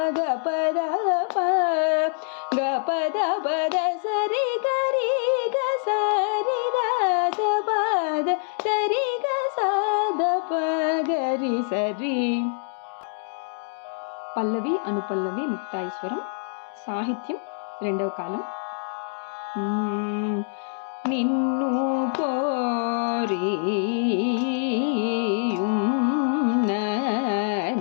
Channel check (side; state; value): right; silent; 62 dB below the other